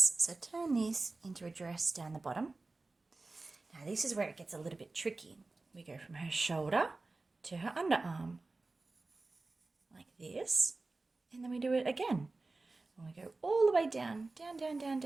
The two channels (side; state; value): left; quieter; 3.4 dB